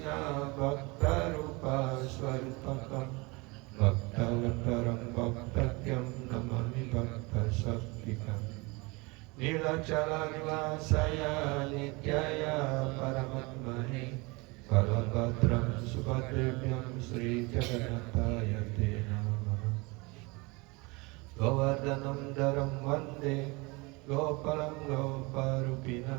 भक्तरूपस्वरूपकं भक्तवत्तरं भक्तज्ञं नमामि भक्तशक्तिकम् नीलाचलनिवासाय नित्याय परमात्मने बलभद्रं सुभद्रेभ्यं श्रीजगन्नाथाय ते नमः गोवर्धनं दरं वन्दे गोपालं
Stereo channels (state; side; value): quieter; left; 26.3 dB